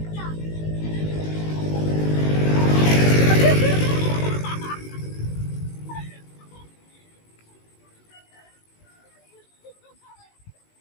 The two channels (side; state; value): right; late; 19 ms